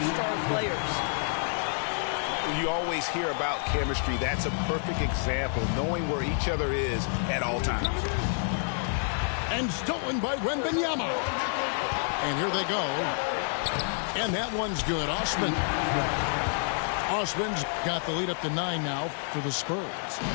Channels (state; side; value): silent; right; 59 dB below the other